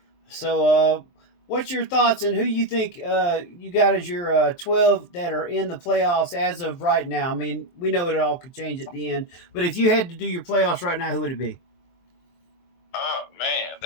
So what's your thoughts on who you think you got as your 12 that are in the playoffs as of right now? I mean, we know it all could change at the end, but if you had to do your playoffs right now, who would it be? Oh man,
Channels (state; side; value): late; right; 23 ms